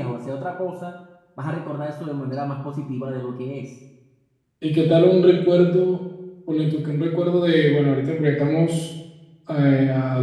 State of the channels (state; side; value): identical; both; correlation 1.00